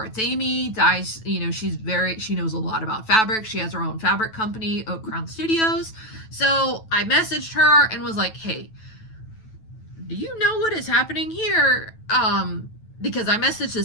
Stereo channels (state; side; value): late; right; 9.1 ms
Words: Amy dyes, she knows a lot about fabric. She has her own fabric company, Oak Crown Studios. So I messaged her and was like, hey, do you know what is happening here? Because I messaged the